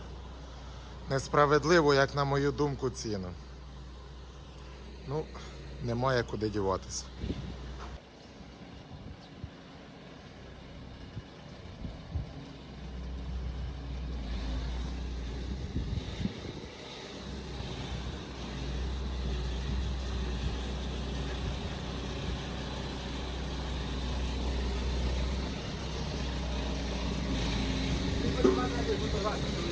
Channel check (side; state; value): both; identical; correlation 1.00